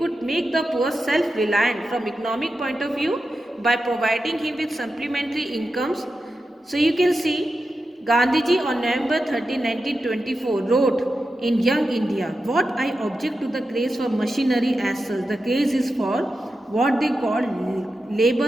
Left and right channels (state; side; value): normal; both; correlation 0.90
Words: make the poor self-reliant from economic point of view by providing him with supplementary incomes. So you can see Gandhiji on November 13, 1924 wrote in Young India, what I object to the craze for machinery as such, the craze is for what they call